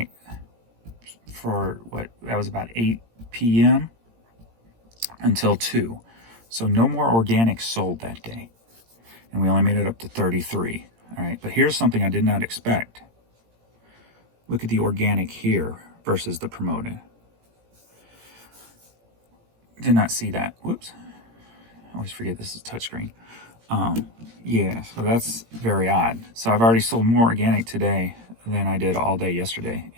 for that was about 8 p.m. until 2. So no more organic sold that day. And we only made it up to 33. All right, but here's something I did not expect. Look at the organic here versus the promoted. Did not see that. Whoops. I always forget this is touchscreen. Yeah, so that's very odd. So I've already sold more organic today than I did all day yesterday,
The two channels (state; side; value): late; left; 17 ms